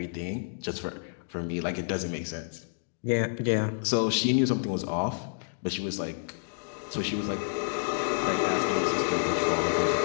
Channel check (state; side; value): silent; right; digital silence